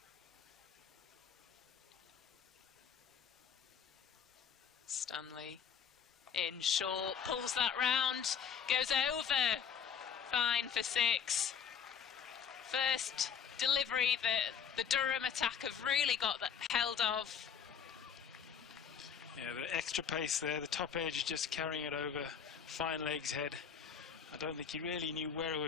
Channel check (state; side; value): quieter; right; 7.6 dB